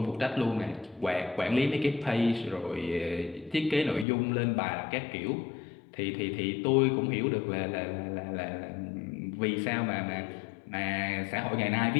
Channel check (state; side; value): drops out; right; at 4.0 s